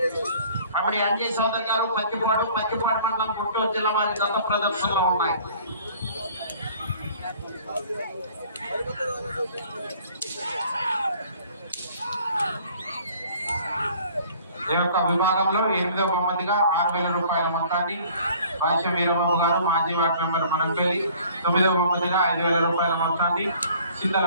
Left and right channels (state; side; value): inverted; both; correlation -0.52